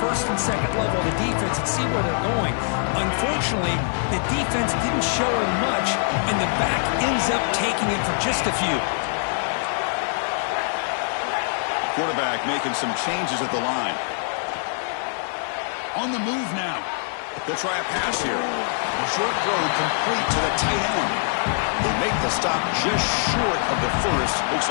and 2nd level of the defense and see where they're going. Unfortunately, the defense didn't show him much, and the back ends up taking it for just a few. Quarterback making some changes at the line. On the move now. They'll try a pass here. Short throw complete to the tight end. They make the stop just short of the first. Looks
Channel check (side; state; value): right; silent; 59 dB below the other